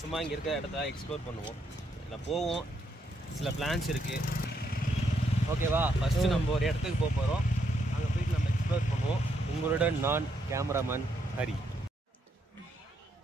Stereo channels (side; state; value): both; normal; correlation 0.76